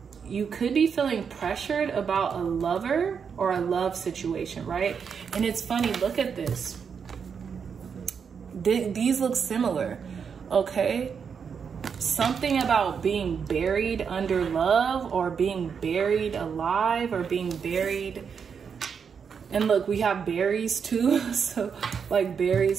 you could be feeling pressured about a lover or a love situation, right? And it's funny, look at this. These look similar, okay? Something about being buried under love, or being buried alive, or being buried. And look, we have berries too. So like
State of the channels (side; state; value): left; quieter; 6.6 dB